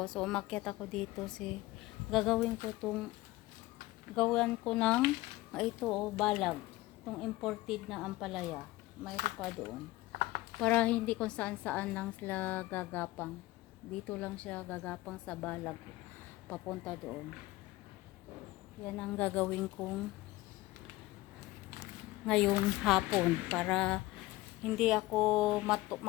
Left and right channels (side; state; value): right; quieter; 18.7 dB